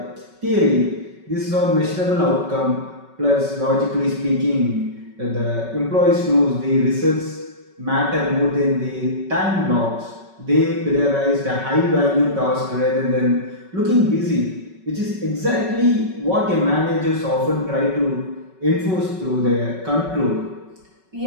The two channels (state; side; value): late; left; 5.3 ms